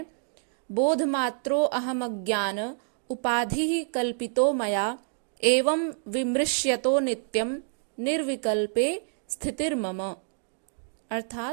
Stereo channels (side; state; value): left; silent; digital silence